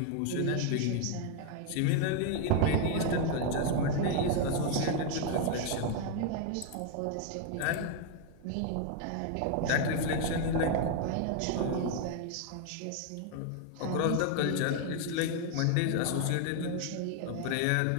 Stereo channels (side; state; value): both; different; correlation 0.00